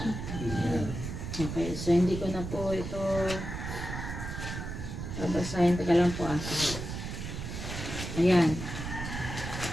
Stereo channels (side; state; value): right; noise; rumble, 6 dB below the sound